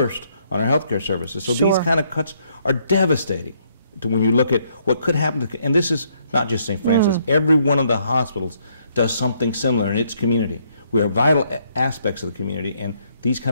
on our healthcare services. So these Sure. kind of cuts are devastating when you look at what could happen to, and this is not just St. Francis, every one of the hospitals does something similar in its community. We are vital aspects of the community, and these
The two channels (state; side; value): inverted; both; correlation -0.70